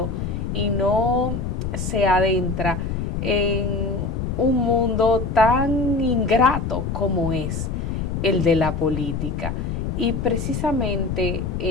y no se adentra en un mundo tan ingrato como es el de la política. Y precisamente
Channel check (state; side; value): noise; left; rumble, 3 dB below the sound